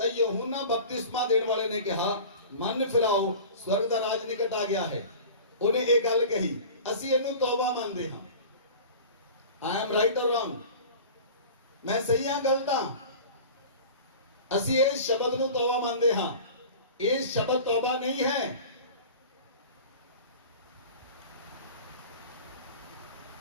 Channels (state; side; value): inverted; both; correlation -0.38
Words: यूहन्ना बपतिस्मा ਦੇਣ ਵਾਲੇ ਨੇ ਕਿਹਾ ਮਨ ਫਿਰਾਓ ਸਵਰਗ ਦਾ ਰਾਜ ਨਿਕਟ ਆ ਗਿਆ ਹੈ। ਉਹਨੇ ਇਹ ਗੱਲ ਕਹੀ, ਅਸੀਂ ਇਹਨੂੰ ਤੌਬਾ ਮੰਨਦੇ ਹਾਂ। I am right or wrong? ਮੈਂ ਸਹੀ ਹਾਂ ਗਲਤ ਹਾਂ? ਅਸੀਂ ਇਸ ਸ਼ਬਦ ਨੂੰ ਤੌਬਾ ਮੰਨਦੇ ਹਾਂ। ਇਹ ਸ਼ਬਦ ਤੌਬਾ ਨਹੀਂ ਹੈ।